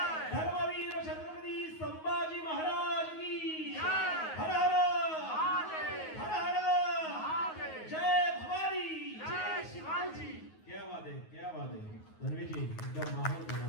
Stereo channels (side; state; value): right; late; 9.4 ms